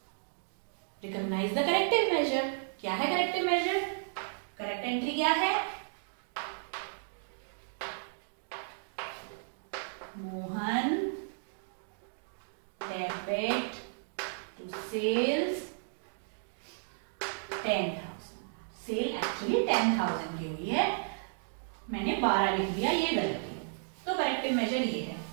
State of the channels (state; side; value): silent; left; digital silence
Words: Recognise the corrective measure. क्या है करेक्टिव मेजर? करेक्ट एंट्री क्या है? Mohan debit to sales 10,000। Sale actually 10,000 की हुई है, मैंने 12 लिख दिया, ये गलती है। तो करेक्टिव मेजर ये है।